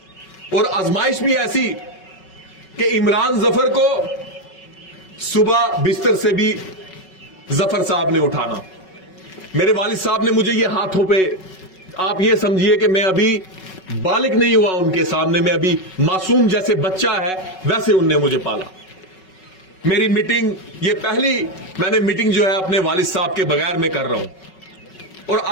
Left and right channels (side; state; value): right; late; 5.4 ms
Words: और आजमाइश भी ऐसी कि इमरान जफर को सुबह बिस्तर से भी जफर साहब ने उठाना। मेरे वालिद साहब ने मुझे ये हाथों पे, आप ये समझिए कि मैं अभी बालिग नहीं हुआ उनके सामने, मैं अभी मासूम जैसे बच्चा है वैसे उनने मुझे पाला। मेरी मीटिंग, ये पहली मैंने मीटिंग जो है अपने वालिद साहब के बगैर में कर रहा हूं। और